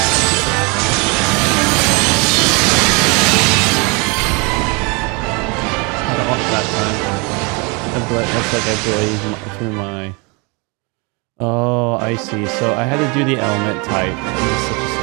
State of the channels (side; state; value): left; quieter; 30.0 dB